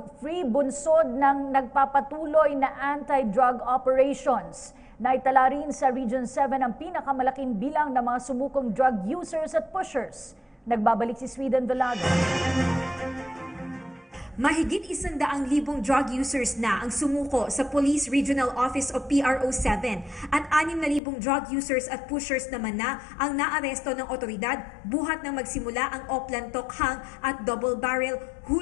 bunsod ng nagpapatuloy na anti-drug operations. Naitala rin sa Region 7 ang pinakamalaking bilang ng mga sumukong drug users at pushers. Nagbabalik si Sweden Velado. Mahigit 100,000 drug users na ang sumuko sa Police Regional Office o PRO7 at 6,000 drug users at pushers naman na ang naaresto ng otoridad buhat nang magsimula ang Oplan Tokhang at Double Barrel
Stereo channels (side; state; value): right; drops out; at 21.0 s